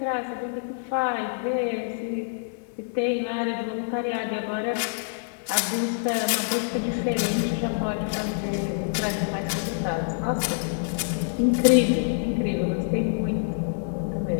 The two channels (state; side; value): silent; right; digital silence